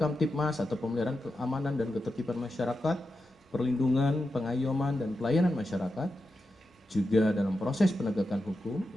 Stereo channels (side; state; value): both; normal; correlation 0.89